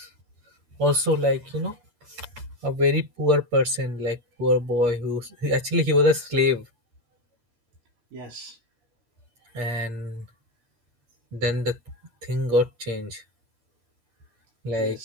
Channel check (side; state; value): left; late; 13 ms